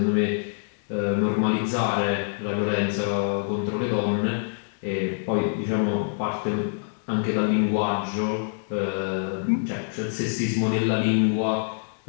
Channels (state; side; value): silent; right; digital silence